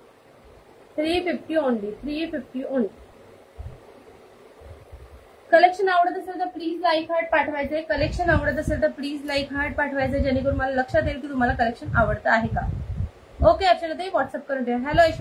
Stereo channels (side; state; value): both; identical; correlation 1.00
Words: 350 ओनली. 350 ओनली. कलेक्शन आवडत असेल तर प्लीज लाईक हार्ट पाठवायचे. कलेक्शन आवडत असेल तर प्लीज लाईक हार्ट पाठवायचे, जेणेकरून मला लक्षात येईल की तुम्हाला कलेक्शन आवडतं आहे का. ओके अर्चनाताई, व्हॉट्सअप करून द्या. हॅलो